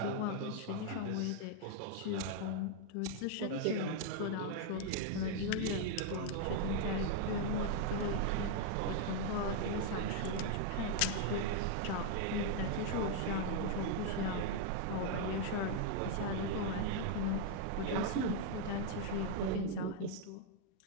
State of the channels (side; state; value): both; different; correlation 0.00